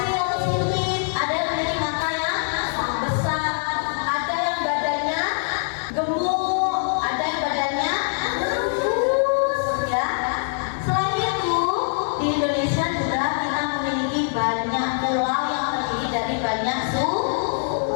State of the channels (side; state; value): right; silent; digital silence